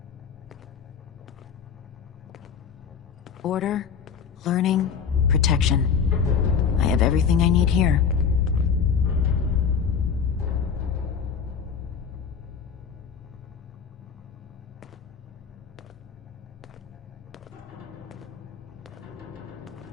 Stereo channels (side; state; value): right; quieter; 6.7 dB